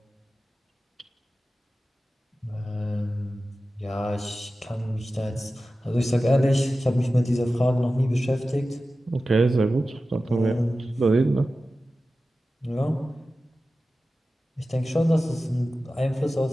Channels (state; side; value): normal; both; correlation 0.94